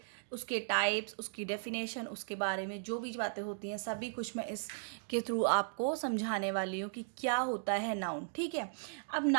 उसके types, उसकी definition, उसके बारे में जो भी बातें होती हैं सभी कुछ मैं इसके थ्रू आपको समझाने वाली हूँ कि क्या होता है noun. ठीक है, अब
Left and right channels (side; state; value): left; silent; digital silence